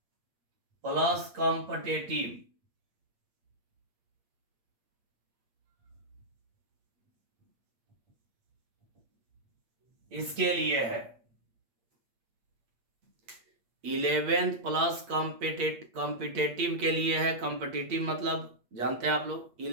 प्लस कॉम्पिटेटिव, इसके लिए है। 11th प्लस कॉम्पिटेटिव के लिए है। कॉम्पिटेटिव मतलब जानते हैं आप लोग,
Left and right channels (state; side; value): late; left; 8.6 ms